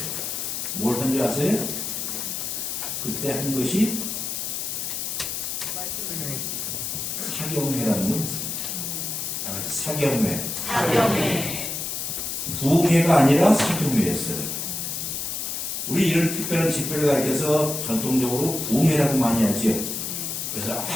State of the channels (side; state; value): left; noise; hiss, 3 dB below the sound